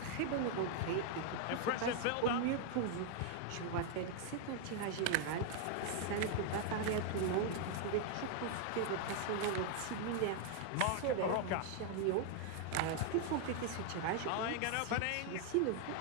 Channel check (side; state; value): both; different; correlation 0.00